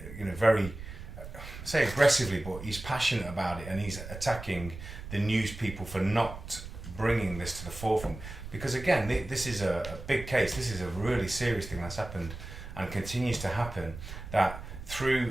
you know, very, I say aggressively, but he's passionate about it, and he's attacking the news people for not bringing this to the forefront. Because again, this is a big case. This is a really serious thing that's happened and continues to happen. That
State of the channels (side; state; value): right; noise; rumble, 11 dB below the sound